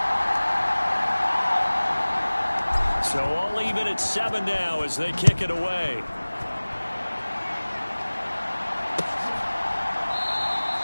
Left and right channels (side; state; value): both; inverted; correlation -1.00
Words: So all even at 7 now as they kick it away.